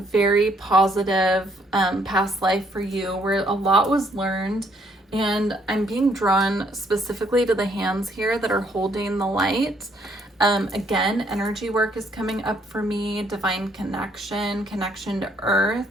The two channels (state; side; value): normal; both; correlation 0.68